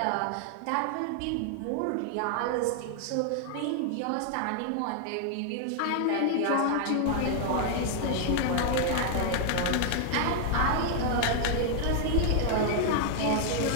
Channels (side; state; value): both; different; correlation 0.00